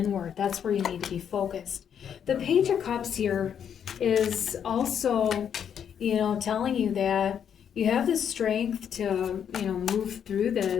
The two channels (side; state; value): right; quieter; 8.4 dB